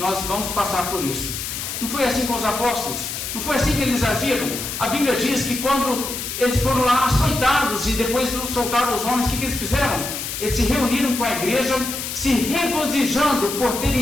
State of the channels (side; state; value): left; noise; hiss, 5 dB below the sound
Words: vamos passar por isso. Não foi assim com os apóstolos? Não foi assim que eles agiram? A Bíblia diz que quando eles foram lá açoitados e depois soltaram os homens, o que eles fizeram? Eles se reuniram com a igreja, se regozijando por